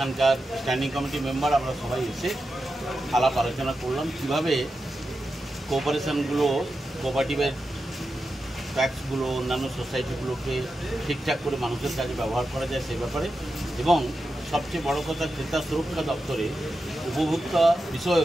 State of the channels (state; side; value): normal; both; correlation 0.90